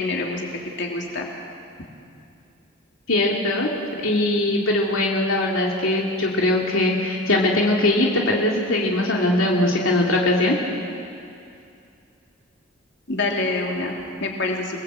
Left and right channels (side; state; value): both; normal; correlation 0.29